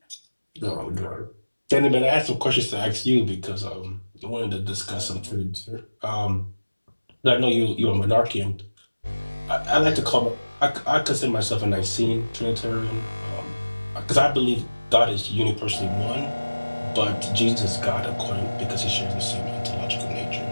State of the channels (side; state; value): both; inverted; correlation -1.00